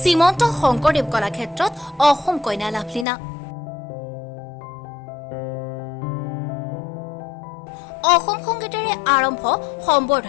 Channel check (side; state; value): right; drops out; at 3.1 s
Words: শংকৰদেৱ কলাক্ষেত্ৰত অসম কন্যা লাভলীনা। অসম সংগীতেৰে আৰম্ভ